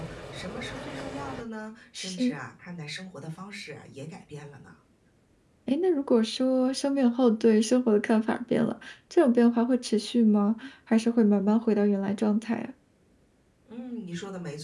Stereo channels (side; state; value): both; identical; correlation 1.00